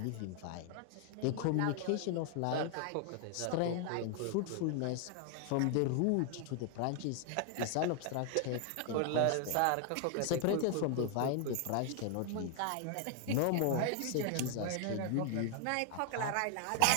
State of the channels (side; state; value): both; different; correlation 0.00